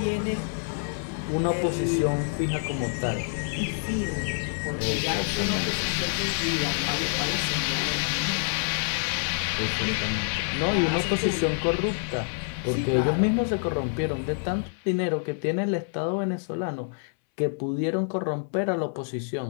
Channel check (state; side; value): silent; right; 60 dB below the other